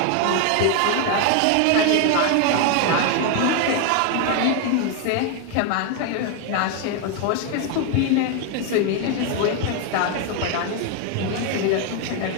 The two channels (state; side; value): different; both; correlation 0.01